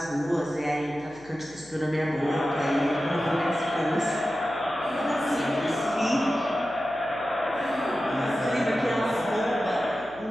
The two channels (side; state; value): left; noise; hum, 22 dB below the sound